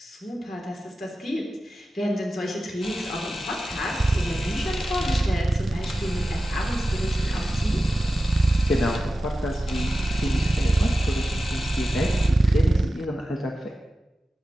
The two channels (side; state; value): both; normal; correlation 0.94